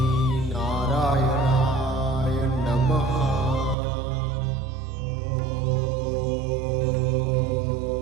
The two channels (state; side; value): drops out; left; at 3.8 s